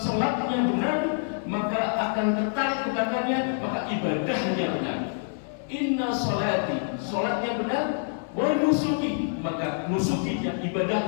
benar, maka akan tertarik ke belakangnya, maka ibadahnya benar. Inna salati, salatnya benar, wa nusuki, maka nusukinya,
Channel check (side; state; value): right; silent; digital silence